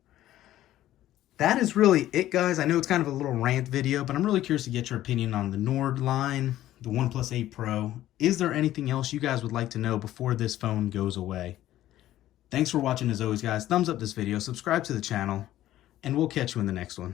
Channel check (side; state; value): right; quieter; 13.7 dB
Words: That is really it, guys. I know it's kind of a little rant video, but I'm really curious to get your opinion on the Nord line, the OnePlus 8 Pro. Is there anything else you guys would like to know before this phone goes away? Thanks for watching as always, guys. Thumbs up this video, subscribe to the channel, and we'll catch you in the next